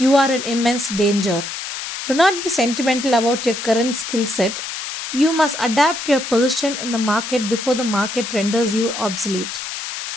are in immense danger. Do not be sentimental about your current skill set. You must adapt your position in the market before the market renders you obsolete.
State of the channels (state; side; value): noise; left; hiss, 7 dB below the sound